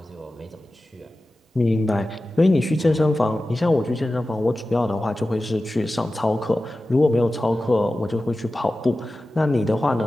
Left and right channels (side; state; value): both; normal; correlation 0.95